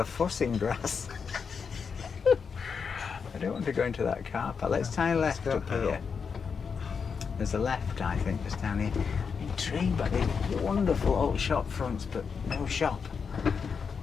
fuss in Grasse. I don't want to go into that car park. Let's try left up here. There's a left, I think, just down here. tree, but these wonderful old shop fronts, but no shop.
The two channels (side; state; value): right; quieter; 5.9 dB